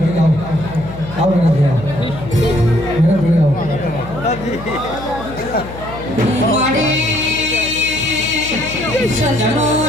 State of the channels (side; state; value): left; noise; hum, 13 dB below the sound